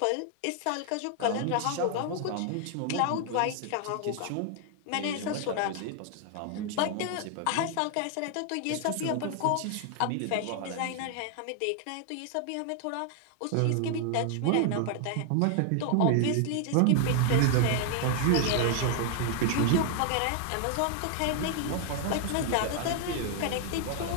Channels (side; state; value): both; different; correlation 0.00